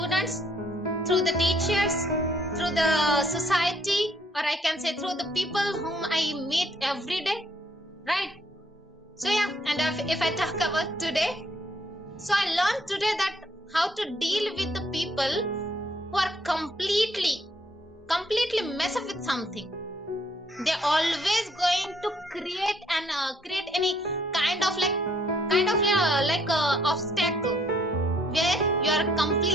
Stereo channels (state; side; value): normal; both; correlation 0.67